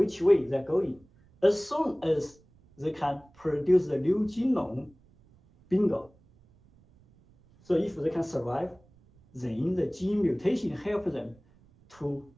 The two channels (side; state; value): right; noise; rumble, 29 dB below the sound